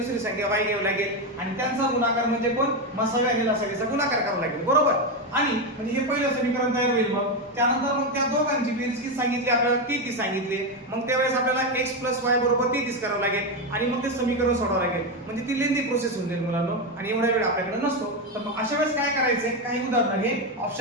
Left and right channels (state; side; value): normal; both; correlation 0.10